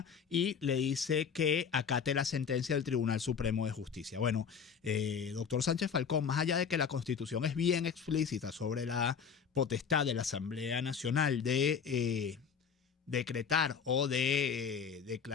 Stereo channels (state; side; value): quieter; right; 6.7 dB